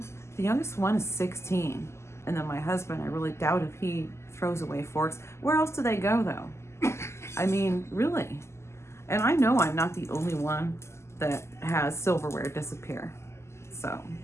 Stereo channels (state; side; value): late; right; 0.13 ms